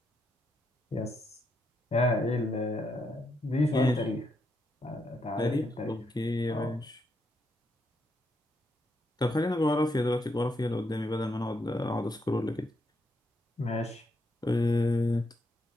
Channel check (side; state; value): both; normal; correlation 0.79